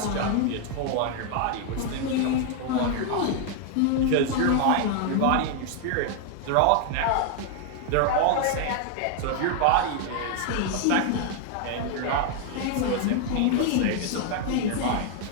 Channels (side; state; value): both; different; correlation 0.00